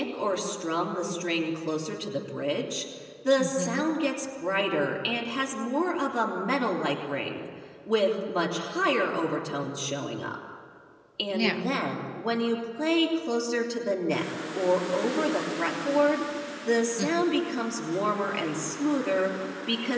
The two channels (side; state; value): both; identical; correlation 1.00